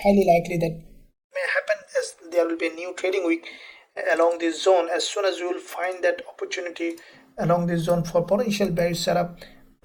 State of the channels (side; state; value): both; identical; correlation 1.00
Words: likely that may happen as there will be a new trading week along this zone. As soon as you will find that opportunity along this zone for potential bearish setup,